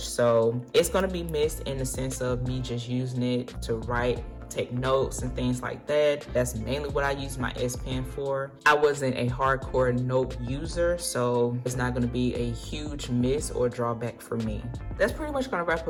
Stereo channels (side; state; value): both; identical; correlation 1.00